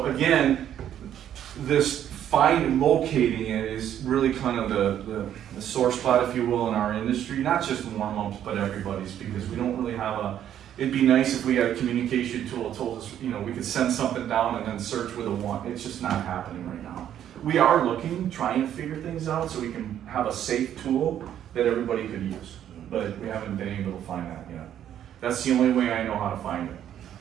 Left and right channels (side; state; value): left; quieter; 10.5 dB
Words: again, this finding and locating it is really kind of the sore spot, if you will, in our industry. Not just Warmups, but everybody's, because we don't really have It'd be nice if we had a communication tool that told us, you know, we could send something down and then search with a 1. It's just not happening right now. We are looking, trying to figure things out so we can have a safe tool that everybody could use, but we haven't been able to find that yet. That's the only way I know how to find it.